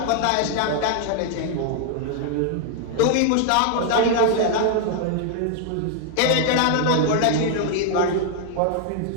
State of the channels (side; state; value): both; different; correlation 0.00